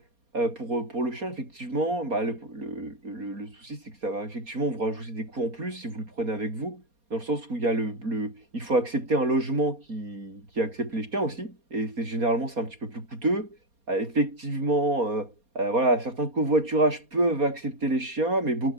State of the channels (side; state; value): left; late; 4.2 ms